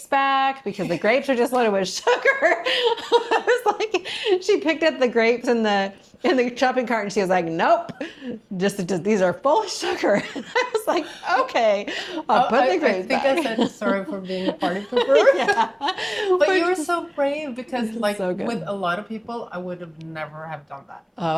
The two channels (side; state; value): both; identical; correlation 1.00